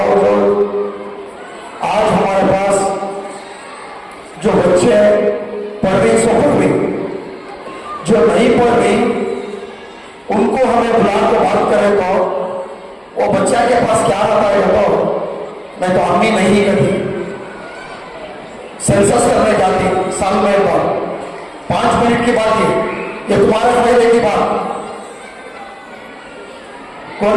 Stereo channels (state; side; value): identical; both; correlation 1.00